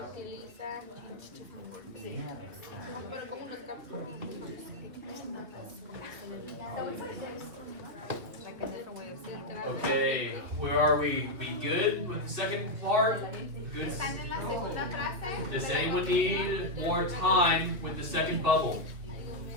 Pero como los Like a different way of saying it. Okay, where are we? We good with the second part? Good. Están en la segunda frase. Does anyone need more time with the second bubble?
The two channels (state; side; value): late; left; 2.8 ms